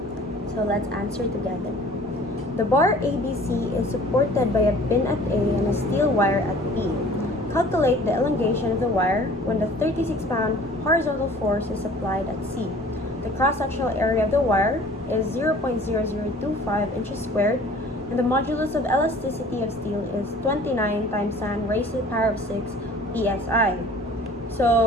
So let's answer together. The bar ABC is supported by a pin at A and a steel wire at B. Calculate the elongation of the wire when the 36-pound horizontal force is applied at C. The cross-sectional area of the wire is 0.0025 inches squared, and the modulus of elasticity of steel is 29 times 10 raised to the power of 6 psi.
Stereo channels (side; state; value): both; normal; correlation 0.49